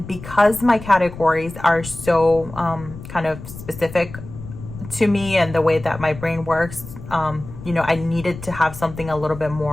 because my categories are so kind of specific to me and the way that my brain works, you know, I needed to have something a little bit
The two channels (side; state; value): left; noise; rumble, 13 dB below the sound